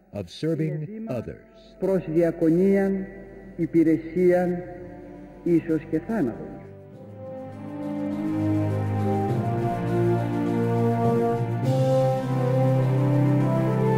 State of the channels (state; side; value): identical; both; correlation 1.00